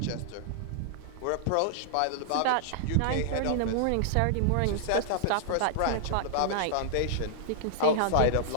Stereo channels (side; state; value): both; different; correlation -0.01